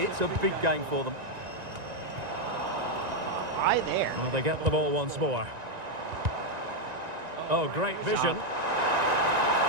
a big game for them. Why there? Well, they get the ball once more. Oh, great vision.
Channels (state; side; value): late; left; 1.9 ms